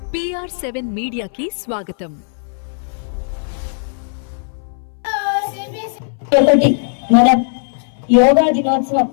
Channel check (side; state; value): right; silent; 62 dB below the other